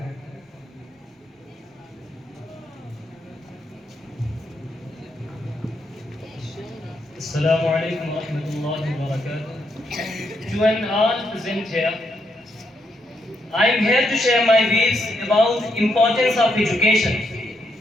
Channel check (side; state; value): both; normal; correlation 0.79